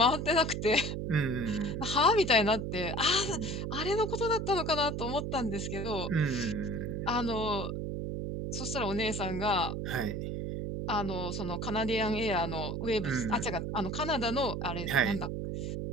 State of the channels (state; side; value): noise; right; hum, 3 dB below the sound